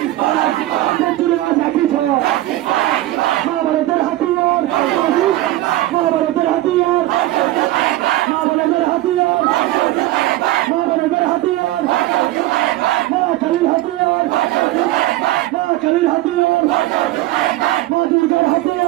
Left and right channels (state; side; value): quieter; left; 16.4 dB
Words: আজ একই ঘর মহাভারতের হাতিয়ার মহাভারতের হাতিয়ার মহাভারতের হাতিয়ার মহাভারতের হাতিয়ার মা কালীর হাতিয়ার মা কালীর হাতিয়ার মা দুর্গার